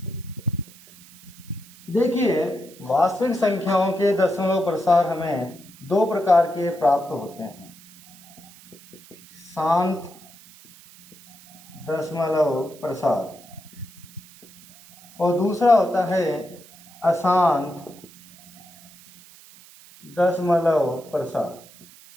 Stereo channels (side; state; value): right; noise; hiss, 22 dB below the sound